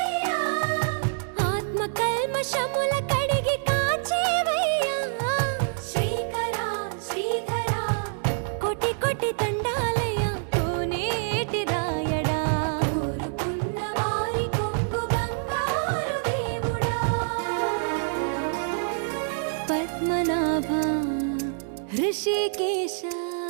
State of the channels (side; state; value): left; silent; digital silence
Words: ఆత్మ కల్మషముల కడిగి కాచేవయ్యా శ్రీకరా శ్రీధరా కోటి కోటి దండాలయ్యా కోనేటి రాయడా కోరుకున్న వారి కొంగు బంగారు దేవుడా పద్మనాభ ऋषिकेश